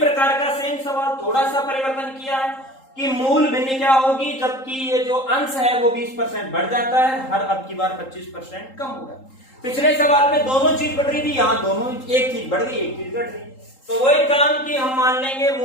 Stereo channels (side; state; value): right; late; 3.8 ms